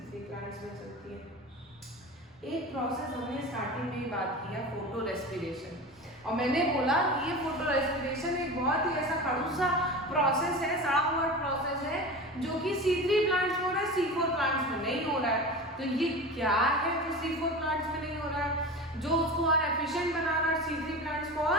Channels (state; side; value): normal; both; correlation 0.30